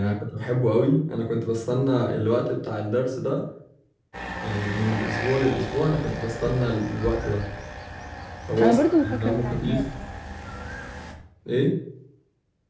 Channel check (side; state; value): both; identical; correlation 1.00